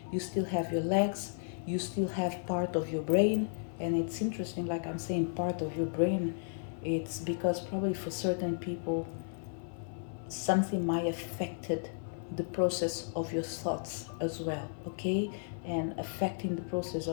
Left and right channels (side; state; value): right; silent; 55 dB below the other